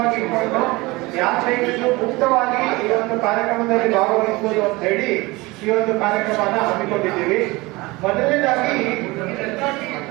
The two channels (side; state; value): left; quieter; 22.5 dB